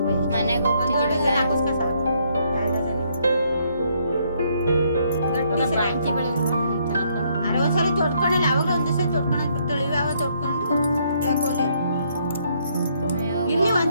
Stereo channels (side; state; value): both; inverted; correlation -0.70